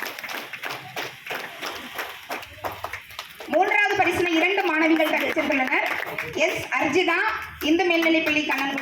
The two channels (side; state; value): both; identical; correlation 1.00